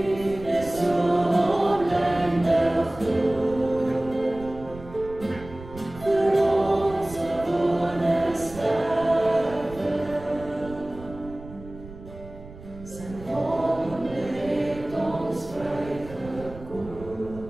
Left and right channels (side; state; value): right; noise; rumble, 16 dB below the sound